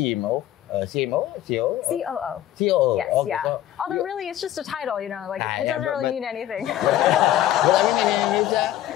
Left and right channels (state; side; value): quieter; right; 13.0 dB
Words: CMO, CEO, COO. COO. Yes, okay, yeah. So although really, it's just a title, you know, like it doesn't really mean anything. But I mean, in